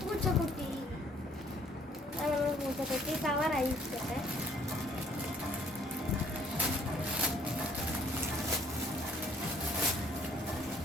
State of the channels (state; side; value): normal; both; correlation 0.62